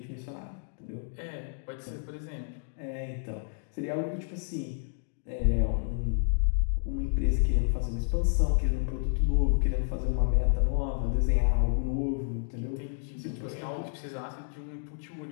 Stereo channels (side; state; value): right; silent; digital silence